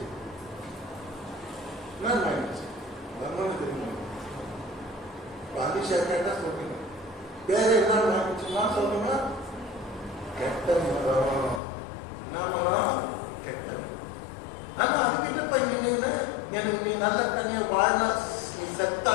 நான் வாங்கிடுச்சு தெரியுமா? பாலிஷா கேட்டா சொல்றீங்க. வேற என்ன வாங்கிடுச்சுன்னா சொல்லுங்க, கெட்ட மரம். என்ன மரம்? கெட்ட. ஆனா அதுக்கிட்ட பையன் எனக்கு நீ நல்ல கனியை வாழ்னா, நீ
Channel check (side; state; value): right; drops out; at 11.6 s